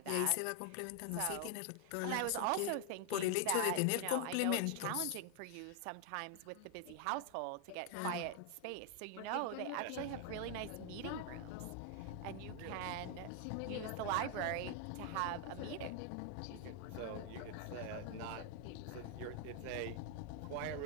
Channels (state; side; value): different; both; correlation 0.00